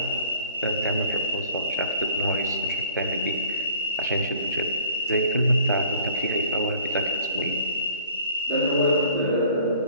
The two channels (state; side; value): inverted; both; correlation -0.52